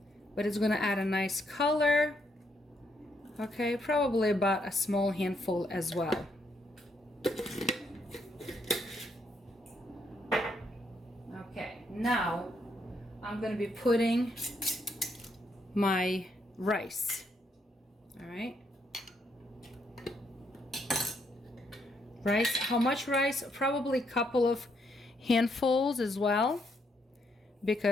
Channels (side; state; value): both; normal; correlation 0.75